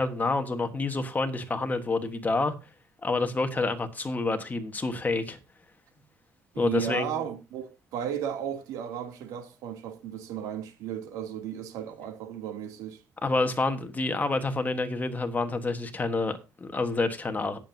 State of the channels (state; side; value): normal; both; correlation 0.72